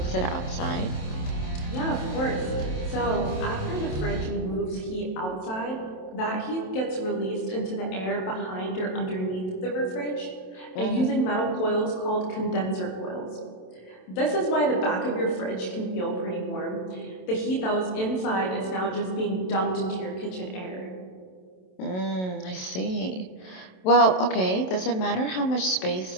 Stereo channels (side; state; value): right; late; 27 ms